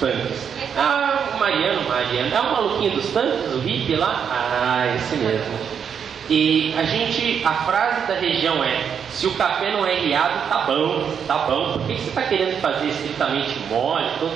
Mariano, é o maluquinho dos tanques, o hippie lá? Esse mesmo. E a frase da região é: se o café não é riado, tá bom. Por que você está querendo fazer estritamente mole,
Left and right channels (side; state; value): left; quieter; 7.5 dB